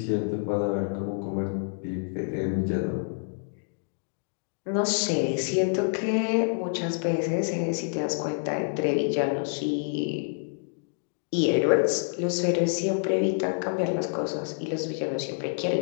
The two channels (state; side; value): silent; right; digital silence